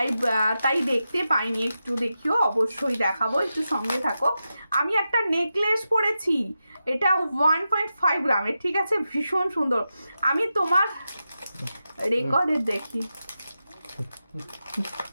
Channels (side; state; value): both; inverted; correlation -0.90